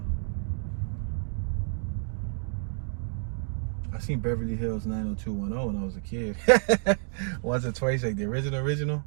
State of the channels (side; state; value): left; silent; 58 dB below the other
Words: I seen Beverly Hills 90210 when I was a kid. Once or twice, like the original.